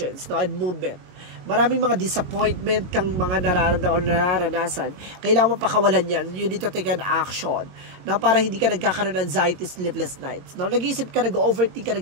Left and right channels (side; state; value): left; late; 22 ms